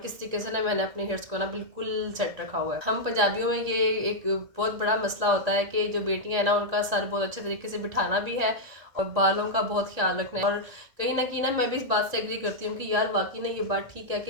तरीके से ना मैंने अपने हेयर्स को ना बिल्कुल सेट रखा हुआ है। हम पंजाबियों में ये एक बहुत बड़ा मसला होता है कि जो बेटियां हैं ना, उनका सर बहुत अच्छे तरीके से बिठाना भी है और बालों का बहुत ख्याल रखना है। और कहीं ना कहीं ना मैं भी इस बात से एग्री करती हूँ कि यार वाकई ना ये बात ठीक है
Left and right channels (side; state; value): left; late; 1.8 ms